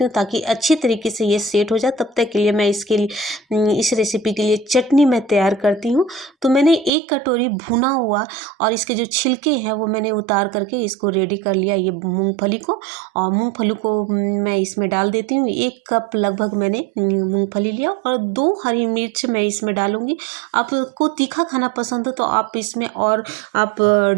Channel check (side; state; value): left; drops out; at 6.9 s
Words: हूँ ताकि अच्छी तरीके से ये सेट हो जाए। तब तक के लिए मैं इसके लिए इस रेसिपी के लिए चटनी मैं तैयार करती हूँ। तो मैंने 1 कटोरी भुना हुआ और इसके जो छिलके हैं वो मैंने उतार करके इसको रेडी कर लिया, ये मूँगफली को। और मूँगफली को मैं इसमें डाल देती हूँ। 1 कप लगभग मैंने मूँगफली लिया और 2 हरी मिर्च मैं इसमें डालूँगी। आपको तीखा खाना पसंद हो तो आप इसमें और आप